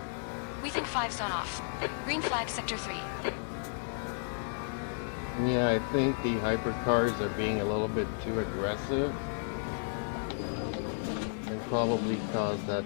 We think 5's gone off. Green flag sector 3. Yeah, I think the hypercars are being a little bit too aggressive. And probably caused that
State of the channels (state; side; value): silent; right; 56 dB below the other